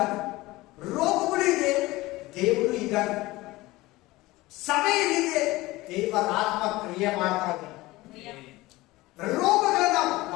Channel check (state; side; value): quieter; right; 19.6 dB